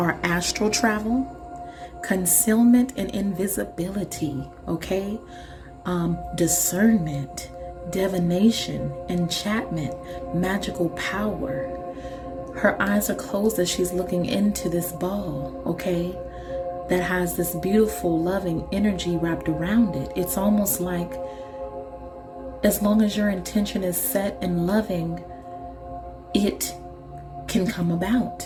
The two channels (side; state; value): both; identical; correlation 1.00